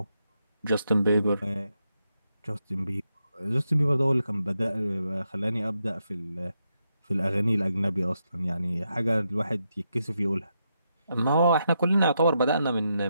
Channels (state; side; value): inverted; both; correlation -0.83